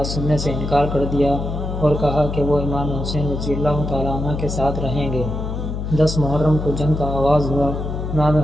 سننے سے انکار کر دیا اور کہا کہ وہ امام حسین رضی اللہ تعالیٰ عنہ کے ساتھ رہیں گے۔ 10 محرم کو جنگ کا آغاز ہوا۔ امام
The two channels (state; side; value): noise; left; hum, 4 dB below the sound